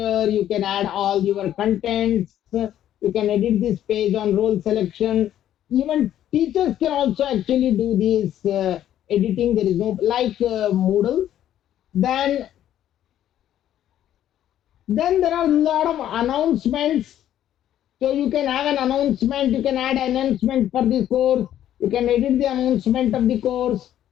You can add all your contents. You can edit this page on role selection. Even teachers can also actually do this editing. There is no like Moodle. Then there are a lot of announcements. So you can have an announcement, you can add announcement for the course, you can edit the announcement of the course.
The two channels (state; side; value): quieter; right; 11.5 dB